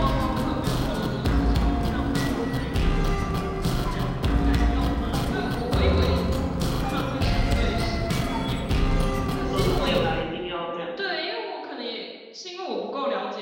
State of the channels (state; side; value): identical; both; correlation 1.00